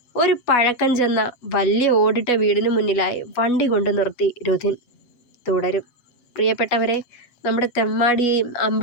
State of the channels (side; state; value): right; late; 7.3 ms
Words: ഒരു പഴക്കം ചെന്ന വലിയ ഓടിട്ട വീടിന് മുന്നിലായി വണ്ടി കൊണ്ട് നിർത്തി രുധിൻ. തുടരും. പ്രിയപ്പെട്ടവരെ, നമ്മുടെ തെമ്മാടിയെയും